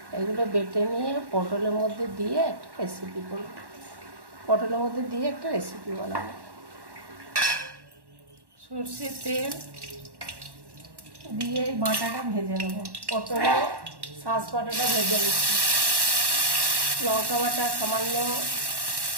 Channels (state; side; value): late; left; 1.1 ms